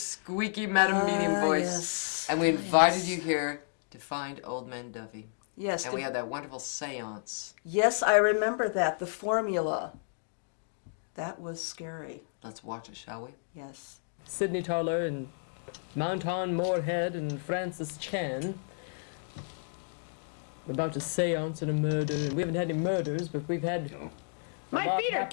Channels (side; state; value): right; silent; digital silence